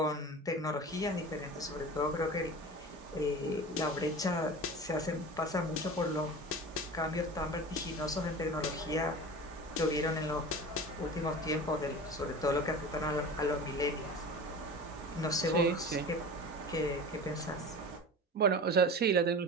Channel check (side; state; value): both; normal; correlation 0.34